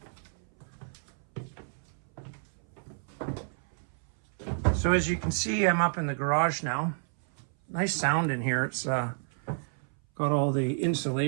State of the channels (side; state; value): left; silent; 58 dB below the other